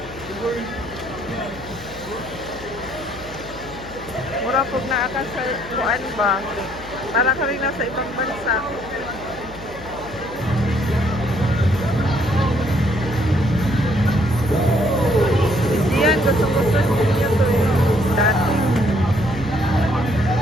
Mura pag naakas sa kuan ba? Para ka rin nasa ibang bansa. Hindi yan, gusto-gusto ninyo to eh. Dati.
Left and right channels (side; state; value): left; noise; hum, 17 dB below the sound